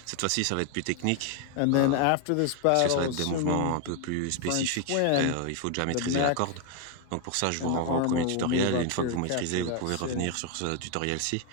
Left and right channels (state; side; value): different; both; correlation 0.01